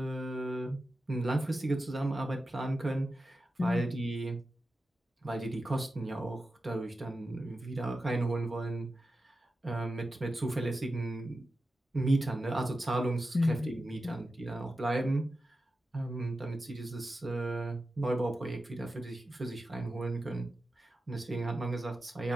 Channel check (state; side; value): normal; both; correlation 0.91